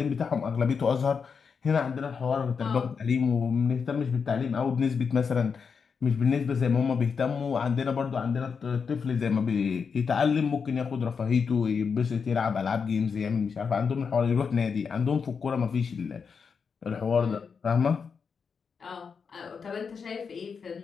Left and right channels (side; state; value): right; quieter; 5.9 dB